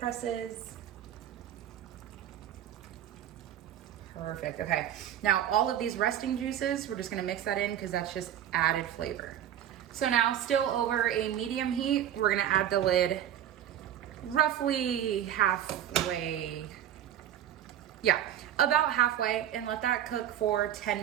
Perfect, okay. Now all of these resting juices, we're just gonna mix that in because that's just added flavor. So now still over a medium heat, we're gonna add the lid roughly halfway, yeah, about halfway, and let that cook for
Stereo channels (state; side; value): quieter; left; 10.9 dB